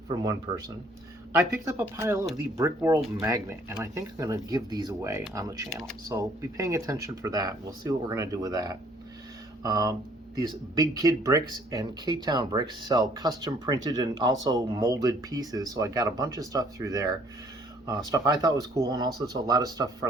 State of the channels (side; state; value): both; normal; correlation 0.61